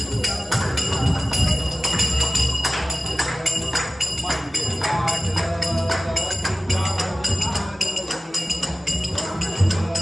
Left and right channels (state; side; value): normal; both; correlation 0.96